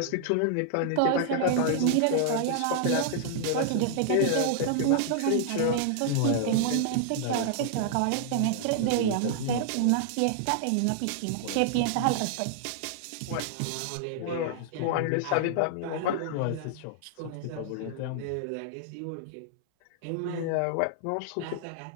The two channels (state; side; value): different; both; correlation -0.01